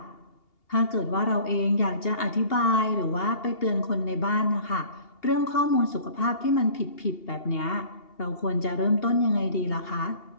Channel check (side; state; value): right; late; 2.8 ms